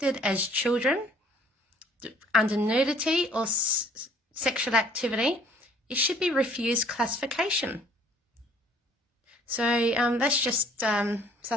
as children under nudity or sexual activity, it should be refused classification. So that's just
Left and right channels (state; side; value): normal; both; correlation 0.58